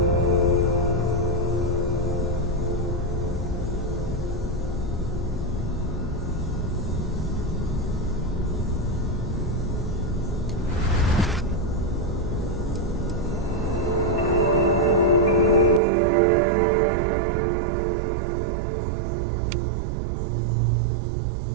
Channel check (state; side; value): drops out; left; at 15.8 s